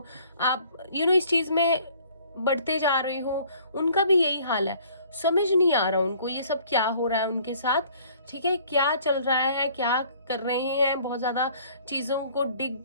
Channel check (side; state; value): both; inverted; correlation -0.56